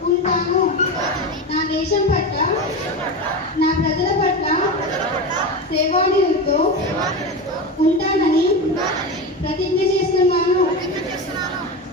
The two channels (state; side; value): normal; both; correlation 0.21